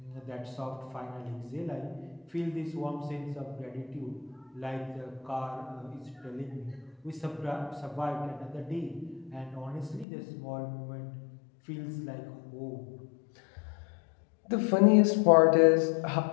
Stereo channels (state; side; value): drops out; right; at 10.1 s